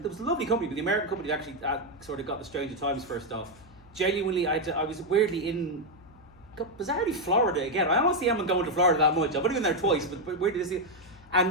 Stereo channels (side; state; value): left; noise; hum, 24 dB below the sound